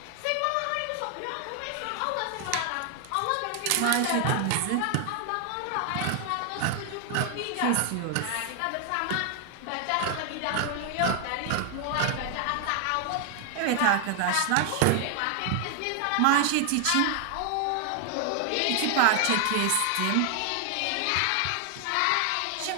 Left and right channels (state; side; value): different; both; correlation 0.00